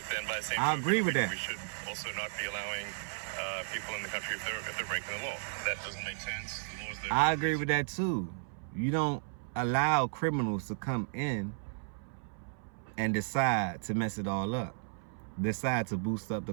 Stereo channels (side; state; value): left; silent; 55 dB below the other